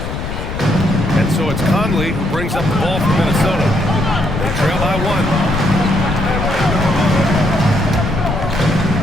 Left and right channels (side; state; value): left; noise; rumble, 6 dB below the sound